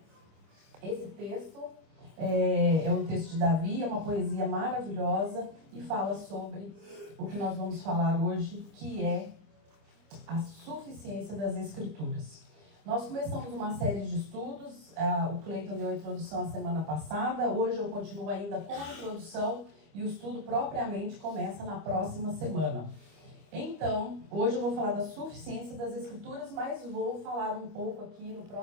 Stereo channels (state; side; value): late; left; 25 ms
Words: Esse texto é um texto de Davi, é uma poesia maravilhosa e fala sobre o que nós vamos falar hoje, que é a suficiência das Escrituras. Nós começamos uma série de estudos, o Cleiton deu a introdução a semana passada, hoje eu continuo ainda com a introdução e o estudo propriamente começa na próxima semana. Então, hoje eu vou falar da suficiência das Escrituras, mas vou falar um pouco aqui no